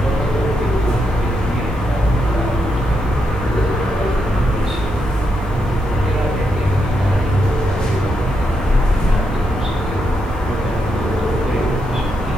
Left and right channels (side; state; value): both; normal; correlation 0.82